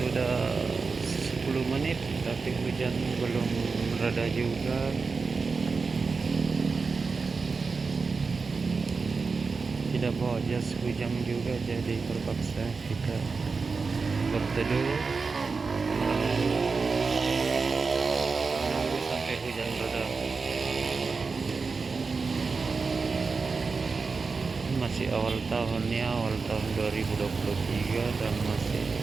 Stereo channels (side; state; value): left; quieter; 4.6 dB